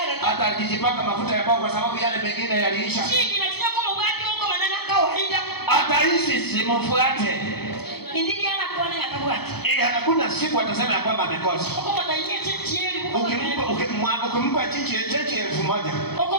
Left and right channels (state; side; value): late; right; 0.97 ms